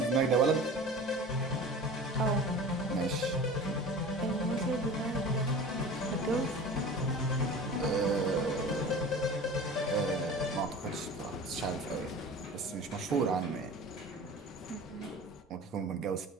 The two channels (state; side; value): normal; both; correlation 0.38